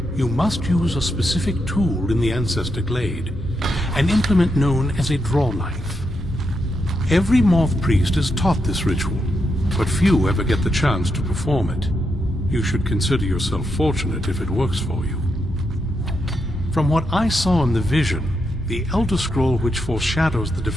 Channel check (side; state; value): both; normal; correlation 0.83